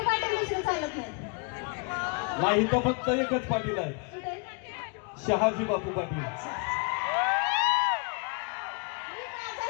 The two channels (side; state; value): right; quieter; 33.5 dB